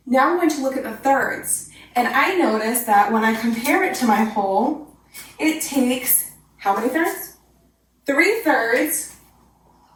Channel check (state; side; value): identical; both; correlation 1.00